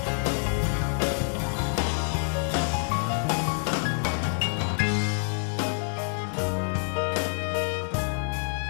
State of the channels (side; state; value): right; silent; 57 dB below the other